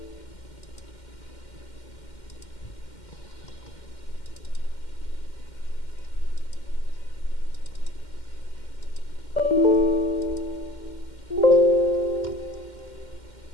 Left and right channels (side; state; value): right; late; 2.1 ms